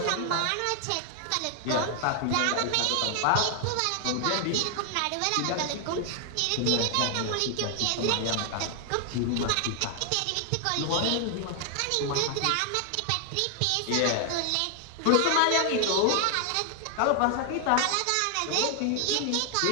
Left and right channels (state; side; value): different; both; correlation 0.00